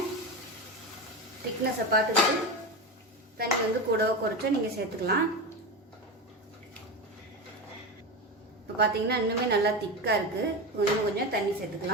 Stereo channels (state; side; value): normal; both; correlation 0.20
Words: திக்னஸை பார்த்துட்டு தண்ணி கூடவோ குறைச்சோ நீங்கள் சேர்த்துக்கலாம். இப்போ பார்த்தீங்கன்னா இன்னுமே நல்லா திக்காக இருக்குது. கொஞ்சம் தண்ணி